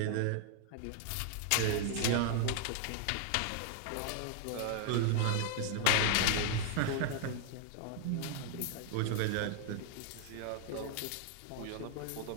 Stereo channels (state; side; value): different; both; correlation 0.00